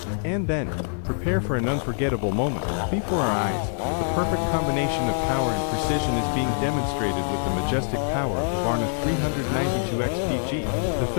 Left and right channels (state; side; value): silent; right; digital silence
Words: And then, prepare for an unforgettable moment. Before our eyes, the perfect combination of power and precision is being demonstrated with the majestic power of the Varna 392XPG. The